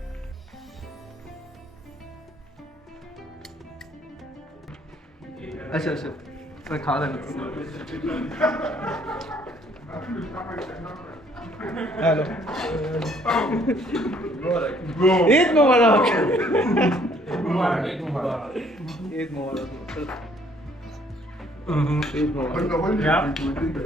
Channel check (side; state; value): both; normal; correlation 0.62